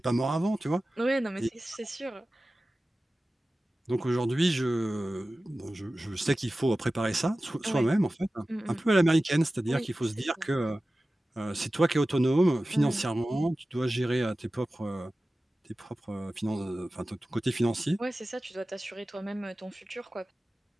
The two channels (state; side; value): normal; both; correlation 0.96